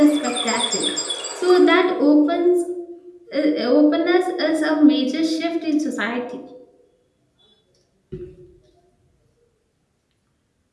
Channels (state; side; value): identical; both; correlation 1.00